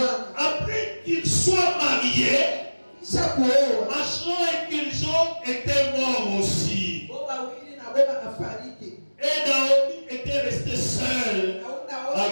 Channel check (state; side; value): inverted; both; correlation -1.00